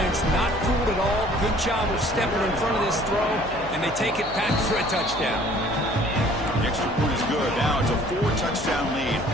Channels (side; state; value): left; noise; hum, 14 dB below the sound